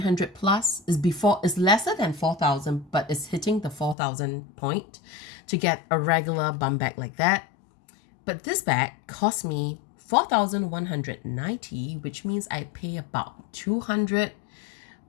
plus. It's lesser than 4,000, but it's hitting the 4,000 point to get a regular bum bag like that. But this bag cost me 4,190, which means I pay about 200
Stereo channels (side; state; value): right; drops out; at 4.0 s